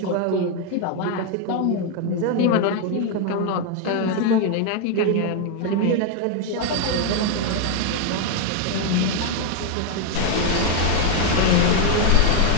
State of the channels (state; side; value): different; both; correlation 0.01